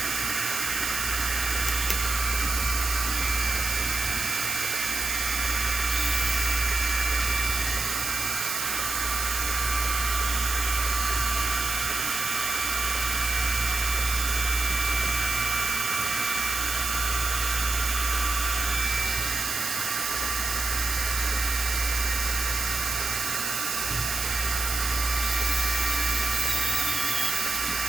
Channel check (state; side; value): noise; right; hiss, 1 dB below the sound